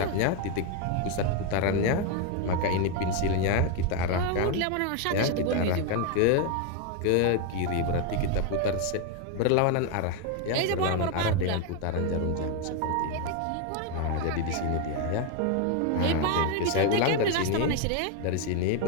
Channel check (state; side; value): different; both; correlation 0.01